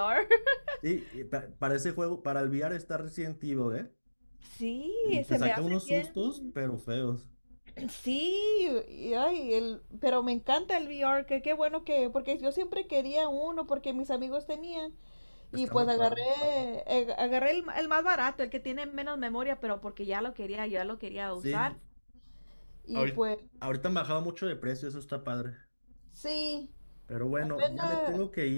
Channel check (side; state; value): both; inverted; correlation -1.00